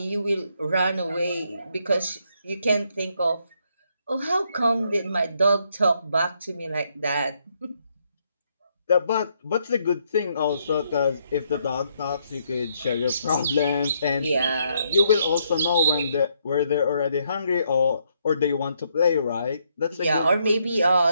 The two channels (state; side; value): inverted; both; correlation -0.74